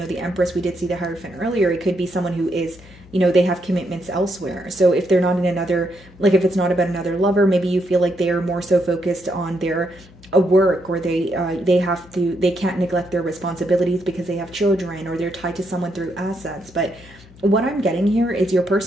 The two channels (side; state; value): left; noise; hum, 23 dB below the sound